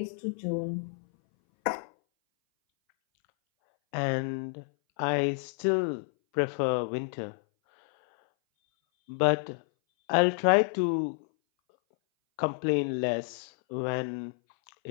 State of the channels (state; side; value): silent; right; 59 dB below the other